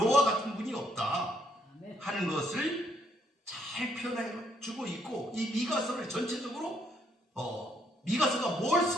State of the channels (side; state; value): both; normal; correlation 0.71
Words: 같은 분이 없다 하는 것을 잘 표현해 주고 있고, 이 미가서를 전체적으로 미가서가 뭘